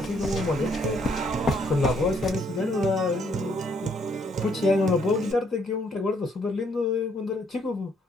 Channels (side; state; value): both; normal; correlation 0.69